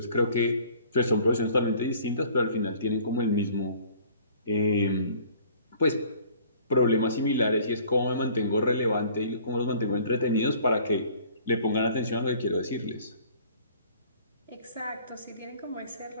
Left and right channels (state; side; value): inverted; both; correlation -0.53